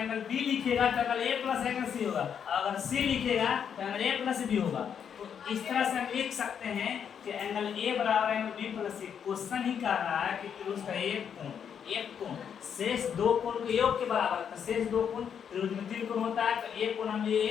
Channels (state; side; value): quieter; right; 7.9 dB